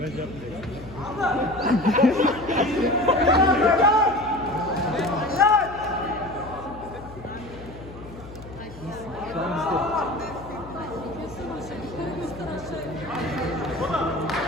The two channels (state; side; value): noise; left; hum, 16 dB below the sound